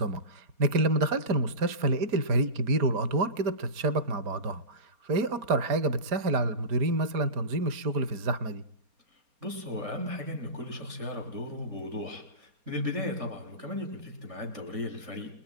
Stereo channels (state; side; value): late; left; 4.3 ms